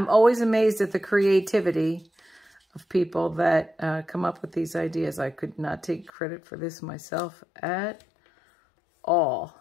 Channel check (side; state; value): right; drops out; at 6.1 s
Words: always amazed at the creativity of people that come up with these ideas. I could not take credit for this myself at all.